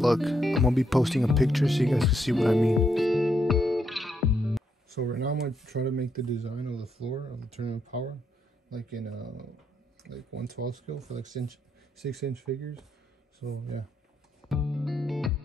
I'm gonna be posting a picture so you guys can see what I mean. So right now I'm gonna try to make the design of the floor of the tournament power like in like 1/12 scale for like 6-inch figures. So yeah.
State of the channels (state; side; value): normal; both; correlation 0.77